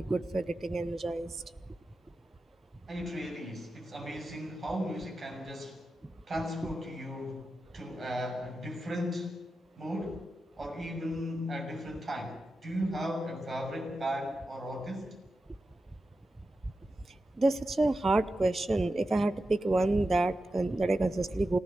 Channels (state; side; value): normal; both; correlation 0.91